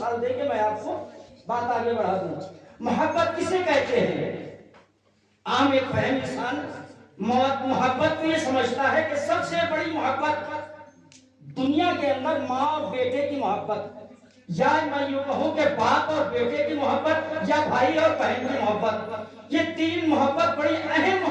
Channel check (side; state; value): both; identical; correlation 1.00